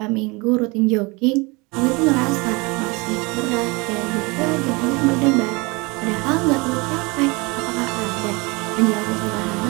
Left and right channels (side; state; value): left; quieter; 26.5 dB